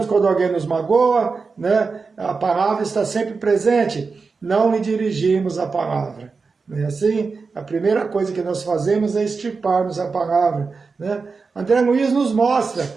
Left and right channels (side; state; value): left; quieter; 4.6 dB